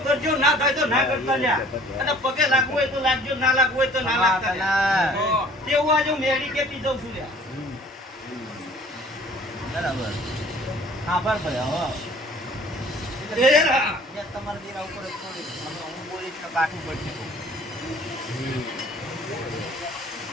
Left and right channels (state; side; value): normal; both; correlation 0.52